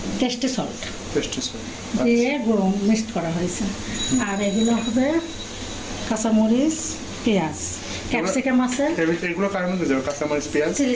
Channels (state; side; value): identical; both; correlation 1.00